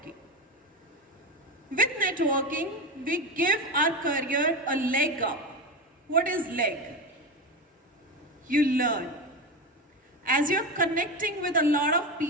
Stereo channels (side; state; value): both; normal; correlation 0.19